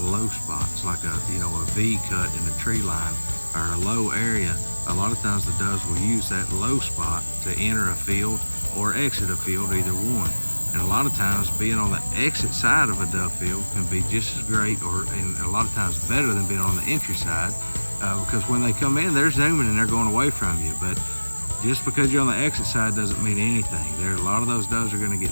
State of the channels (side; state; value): both; inverted; correlation -1.00